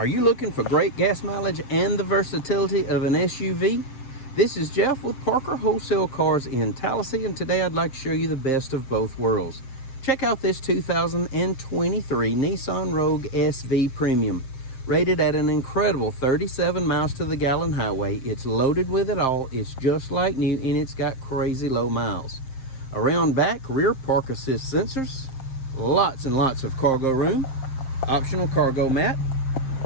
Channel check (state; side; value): late; right; 7.6 ms